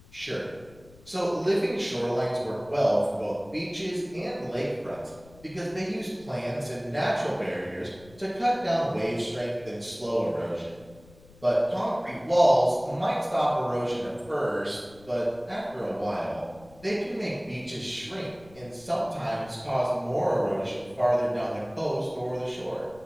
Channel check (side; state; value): left; noise; rumble, 24 dB below the sound